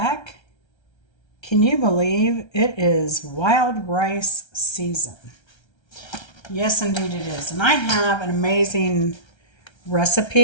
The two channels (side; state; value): right; late; 1.3 ms